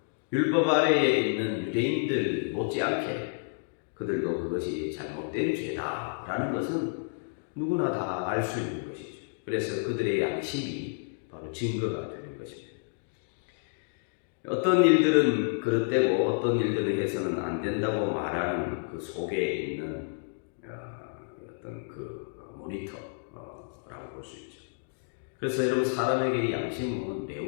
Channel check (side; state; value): right; silent; digital silence